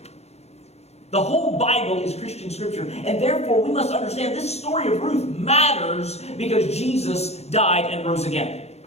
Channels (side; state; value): right; late; 0.31 ms